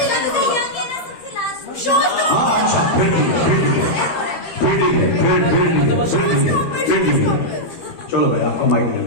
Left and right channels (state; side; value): late; right; 12 ms